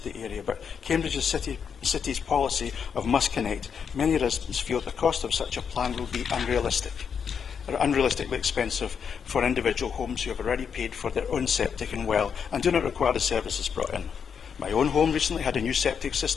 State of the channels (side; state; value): right; quieter; 6.9 dB